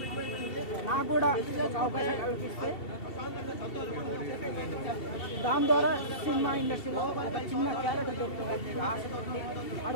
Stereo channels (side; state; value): right; late; 2.7 ms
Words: నాకు కూడా ఒక అవకాశం కల్పిస్తే దాని ద్వారా సినిమా ఇండస్ట్రీలో ఒక చిన్న క్యారెక్టర్ దొరుకుతుంది ఆశపడి